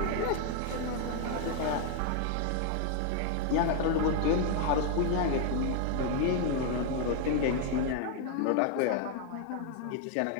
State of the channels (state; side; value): different; both; correlation 0.00